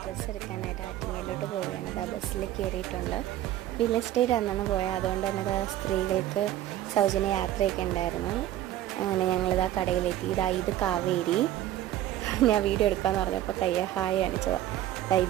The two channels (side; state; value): left; quieter; 13.2 dB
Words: ഡ്രസ്സ് എടുക്കാനായിട്ട് ആറ്റിങ്ങലിലോട്ട് പോവുകയാണ്. അത് ആ ബസ്സിൽ കയറിയിട്ടുണ്ട്. വില്ലേജ് സ്റ്റേറ്റ് അന്നാണ് പോയത്. അതുകൊണ്ട് തന്നെ അത് സ്ത്രീകൾക്ക് സൗജന്യ യാത്രയൊക്കെ ഉണ്ടായിരുന്നു. അങ്ങനെ ഞങ്ങളിതാ കടയിലെത്തി. ഇത് കാവേരി. ഞാൻ വീഡിയോ എടുക്കാമെന്ന് പറഞ്ഞപ്പോൾ ഹായ് കാണിച്ചതാണ്.